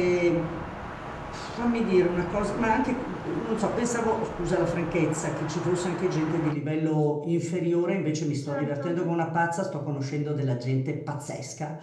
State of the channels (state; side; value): identical; both; correlation 1.00